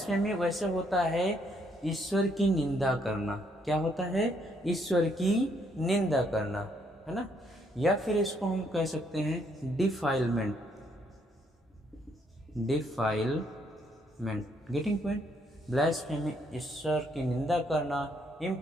वैसे होता है ईश्वर की निंदा करना। क्या होता है? ईश्वर की निंदा करना, है ना। या फिर इसको हम कह सकते हैं defilement. Defilement, getting point. Blasphemy, ईश्वर की निंदा करना।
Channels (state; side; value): normal; both; correlation 0.71